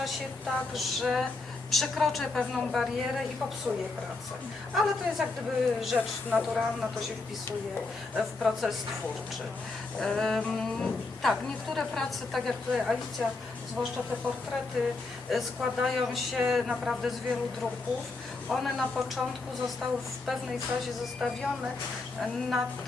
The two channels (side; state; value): right; quieter; 3.6 dB